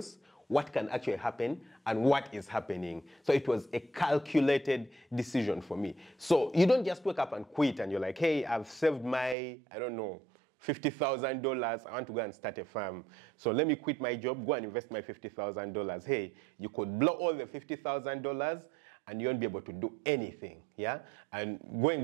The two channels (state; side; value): drops out; left; at 9.3 s